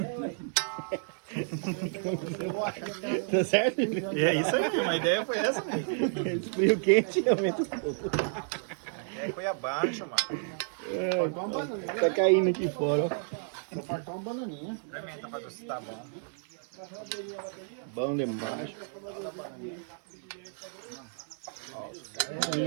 Tá certo? É isso aí, a ideia foi essa mesmo. Esfria o quente e aumenta o pouco. A ideia foi abaixo, mano. Tá caindo aqui fora, ó. Só faltou uma bananinha. Experimenta pra ver se tá bom. Bom demais.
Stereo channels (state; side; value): silent; left; digital silence